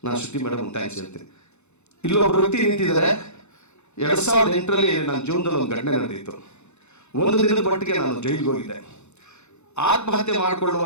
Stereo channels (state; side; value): late; right; 0.82 ms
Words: ನಾನು ಶ್ರುತಿ ಮೇಡಮ್ ಥ್ಯಾಂಕ್ಸ್ ಹೇಳ್ತೀನಿ. ಇಲ್ಲೊಬ್ಬರು ವ್ಯಕ್ತಿ ನಿಂತಿದ್ದಾರೆ. 2008ರಲ್ಲಿ ನನ್ನ ಜೀವನದಲ್ಲಿ ಒಂದು ಘಟನೆ ನಡೆದಿತ್ತು. 1 ದಿನದ ಮಟ್ಟಿಗೆ ನಾನು ಜೈಲಿಗೆ ಹೋಗಿದ್ದೆ. ಆತ್ಮಹತ್ಯೆ